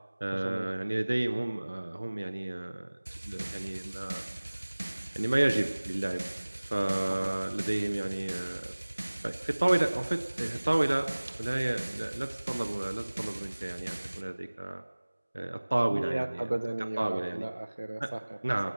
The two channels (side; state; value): both; inverted; correlation -1.00